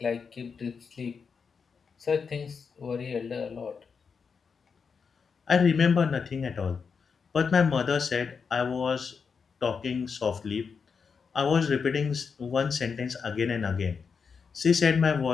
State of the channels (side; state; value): right; quieter; 5.7 dB